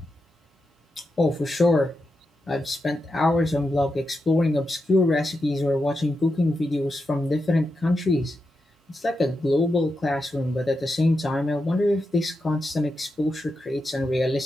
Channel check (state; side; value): normal; both; correlation 0.88